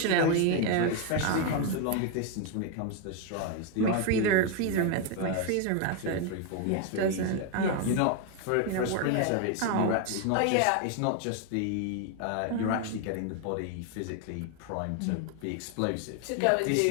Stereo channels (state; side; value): different; both; correlation 0.01